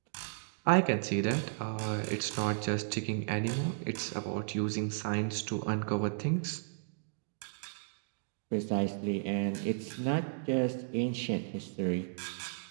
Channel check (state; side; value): silent; left; digital silence